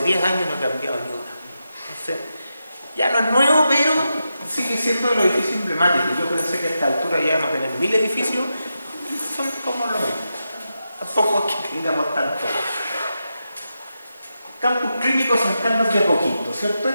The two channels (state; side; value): inverted; both; correlation -0.88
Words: 10 años y no he cambiado ni una. Entonces, ya no es nuevo, pero sigue siendo de los edificios emblemáticos. Yo pensé que a esta altura ya vamos a tener 1000 edificios y son como lo mismo. Tampoco es que tengamos tanto. Campus clínicos San Carlos de Apoquindo, ¿cierto?